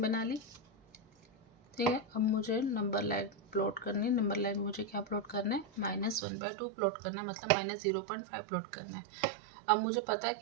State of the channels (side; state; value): left; drops out; at 6.2 s